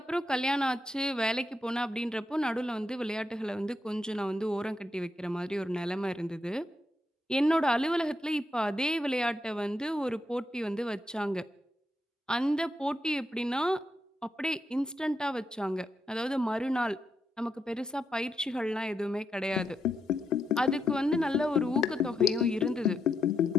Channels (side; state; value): both; normal; correlation 0.82